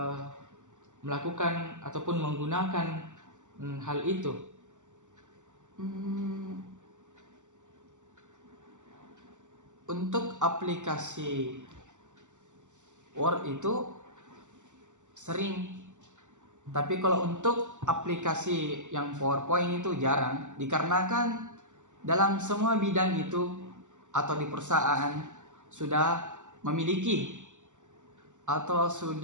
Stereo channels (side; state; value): left; late; 0.85 ms